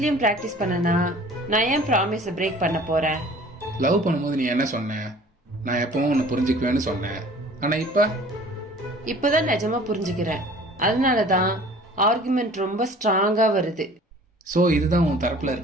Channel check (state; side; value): normal; both; correlation 0.48